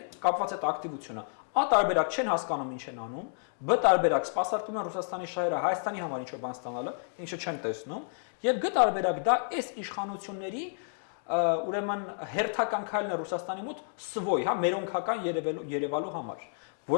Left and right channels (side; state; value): right; silent; digital silence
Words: կապված այդ ակտիվությունը։ Ա տարբերակ չեն հասկանում ինչ են անում, բ տարբերակ սպասարկում են Ռուսաստանի շահերը Հայաստանի համար ինչ-որ բան ստանալը, ինչը չեն տեսնում, եւ գ տարբերակ դա այս իշխանությունների ուրեմն հերթական քայլն է Ռուսաստանի մոտ սվոյ, հա, մերոնքական երևալու համար,